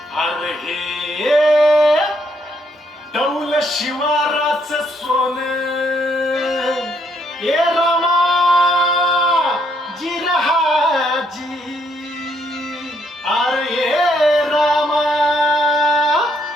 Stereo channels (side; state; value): both; normal; correlation 0.72